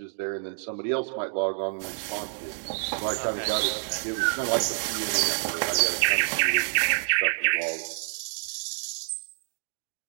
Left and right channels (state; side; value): silent; left; digital silence